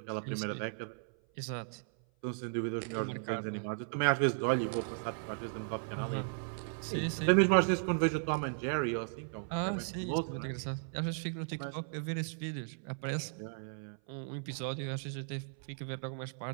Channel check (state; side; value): silent; left; 54 dB below the other